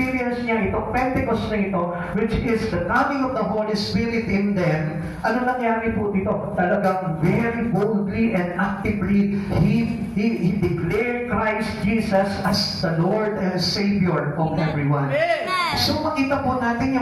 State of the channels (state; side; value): identical; both; correlation 1.00